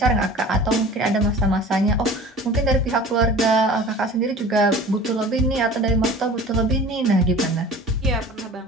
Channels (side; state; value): both; normal; correlation 0.42